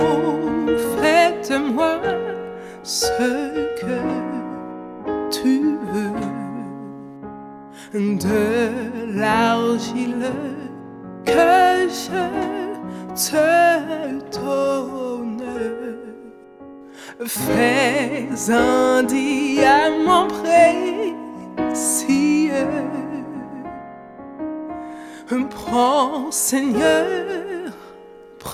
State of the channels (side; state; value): both; identical; correlation 1.00